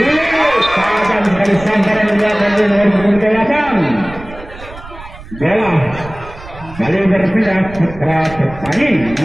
tajam sekali sambaran yang dilakukan oleh nomor 28. Bola kali berpindah Putra Pertani.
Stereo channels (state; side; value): noise; right; rumble, 16 dB below the sound